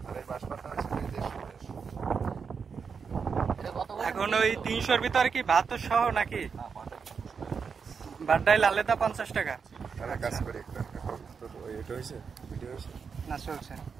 এখন ওই 300-র ভিতরে কি ভাত সহ নাকি? ভাত ডাইল আলাদা 50 টাকা না চলছে।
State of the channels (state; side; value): quieter; left; 5.9 dB